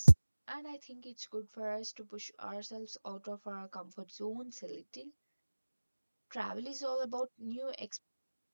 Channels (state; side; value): inverted; both; correlation -1.00